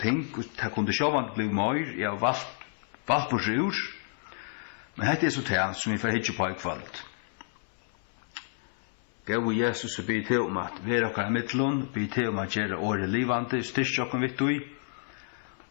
ting, og det kunne sjåvand bli mer, jeg har valgt på sjur, men dette er så det som vi får hitje på i kveld. Gau Jesus be til om at vera okkar mittlun, be til om at gjera året livande, styrst okkar vittu i,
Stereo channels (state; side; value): silent; right; 58 dB below the other